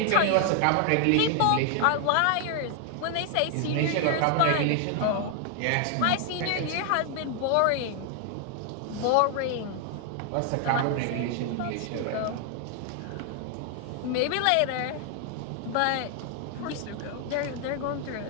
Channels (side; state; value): both; different; correlation 0.00